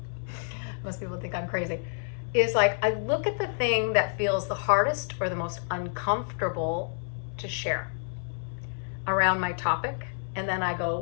most people think I'm crazy, is like I look at the thing that feels the hardest or the most uncomfortable to share around my topic. And then I go,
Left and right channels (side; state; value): right; silent; 59 dB below the other